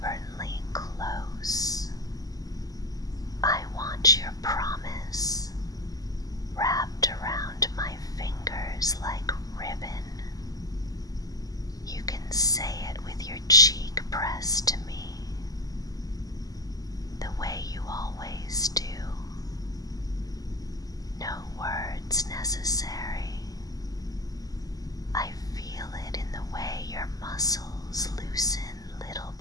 close. I want your promise wrapped around my fingers like ribbon. You can say it with your cheek pressed to me, the way you always do. No words necessary. I feel it in the way your muscles loosen little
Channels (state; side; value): late; right; 0.17 ms